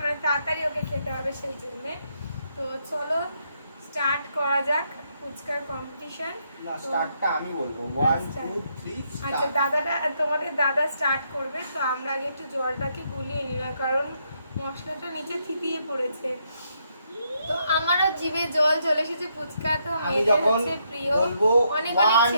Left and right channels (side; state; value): both; inverted; correlation -0.76